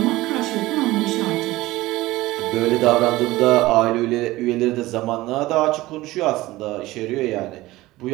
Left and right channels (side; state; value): left; quieter; 18.3 dB